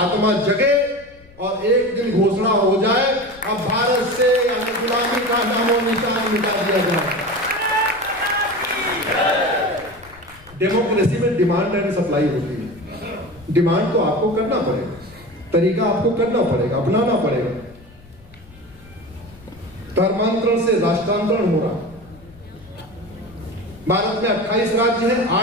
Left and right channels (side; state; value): left; noise; rumble, 24 dB below the sound